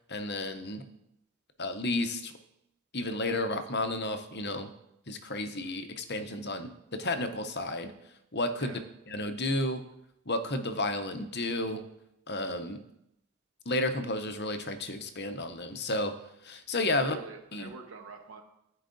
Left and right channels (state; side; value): normal; both; correlation 0.00